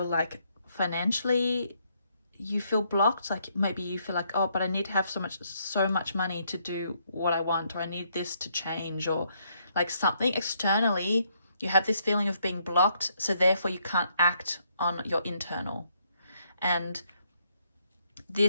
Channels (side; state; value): both; inverted; correlation -0.72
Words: like financially you feel blocked. Like maybe you feel like, oh, but I need to have so much money to do what I want, or I need this to change, or like something externally, you have this feeling of being blocked, so therefore you can't act on your internal. And